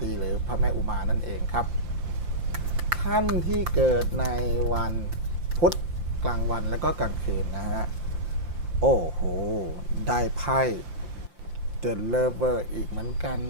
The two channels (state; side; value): late; left; 5.8 ms